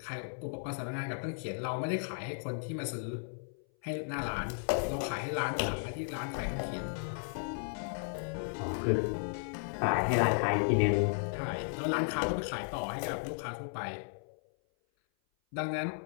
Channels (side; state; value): right; silent; 55 dB below the other